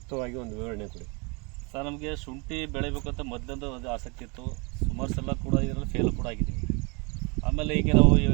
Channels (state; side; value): quieter; left; 30.6 dB